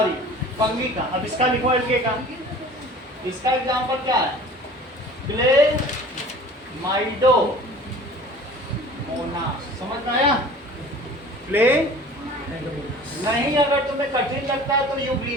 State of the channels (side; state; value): both; normal; correlation 0.44